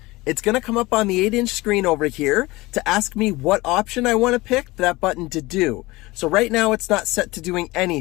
it's going to come up on the 8-inch screen over here to ask me what option I want to pick that button to do. So right now it's not set to doing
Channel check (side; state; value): right; quieter; 20.9 dB